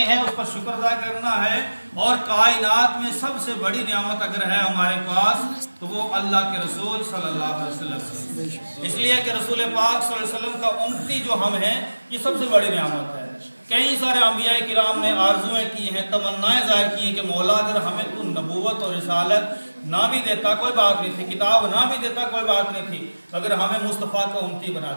ہیں اس پر شکر ادا کرنا ہے. اور کائنات میں سب سے بڑی نعمت اگر ہے ہمارے پاس تو وہ اللہ کے رسول صلی اللہ علیہ وسلم. اس لیے کہ رسول پاک صلی اللہ علیہ وسلم کا امتی جو ہم ہیں، یہ سب سے بڑی نعمت ہے. کئی سارے انبیاء کرام نے آرزویں کی ہیں، تمنائیں ظاہر کی ہیں کہ مولا اگر ہمیں تو نبوت اور رسالت نہ بھی دیتا کوئی بات نہیں تھی، کتاب نہ بھی دیتا کوئی بات نہیں تھی، مگر ہمیں مصطفیٰ کا امتی بنا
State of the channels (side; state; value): both; inverted; correlation -1.00